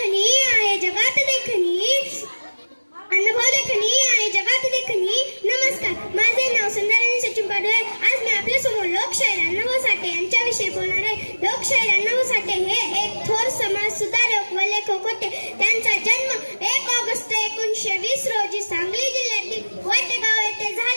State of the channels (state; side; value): inverted; both; correlation -1.00